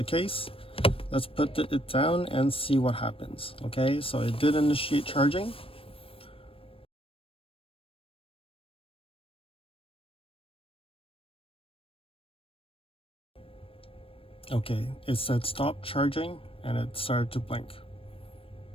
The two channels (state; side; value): late; right; 0.27 ms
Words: case. Let's put it down and see what happens. Okay, so it did initiate charging. Okay, it said stop charging and it started to blink.